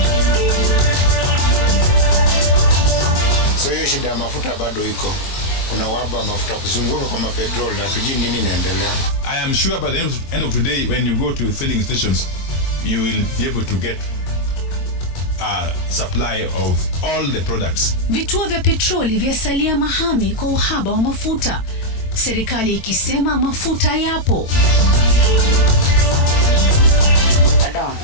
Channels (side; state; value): right; late; 22 ms